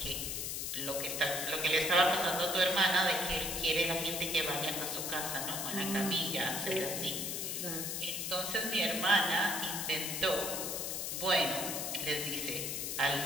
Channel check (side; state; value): left; noise; hiss, 3 dB below the sound